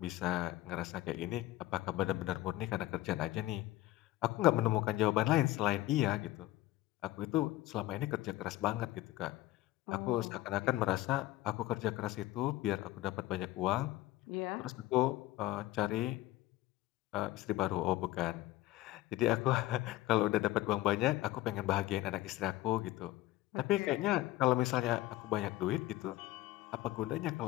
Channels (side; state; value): right; quieter; 16.5 dB